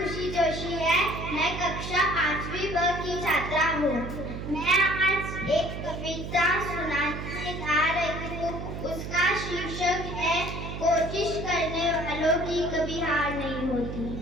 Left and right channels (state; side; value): noise; right; hum, 7 dB below the sound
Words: जोशी है। मैं कक्षा 5वीं ब की छात्रा हूँ। मैं आज एक कविता सुनाने जा रही हूँ। उसका शीर्षक है, कोशिश करने वालों की कभी हार नहीं होती।